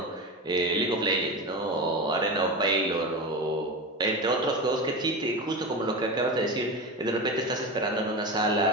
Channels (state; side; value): normal; both; correlation 0.24